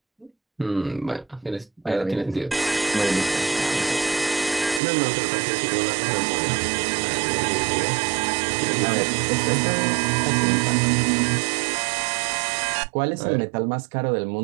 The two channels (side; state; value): left; drops out; at 4.8 s